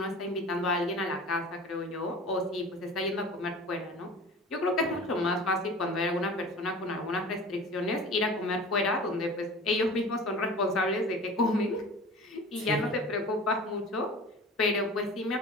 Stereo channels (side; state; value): both; normal; correlation 0.39